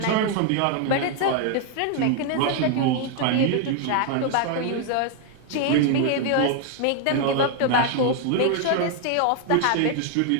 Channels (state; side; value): different; both; correlation 0.00